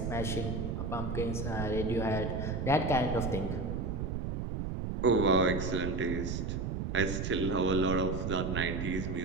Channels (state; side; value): noise; right; rumble, 2 dB below the sound